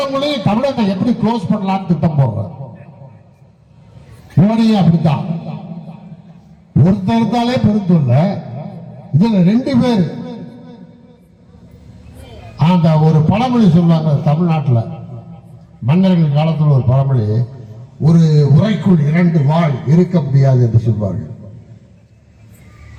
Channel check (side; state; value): both; identical; correlation 1.00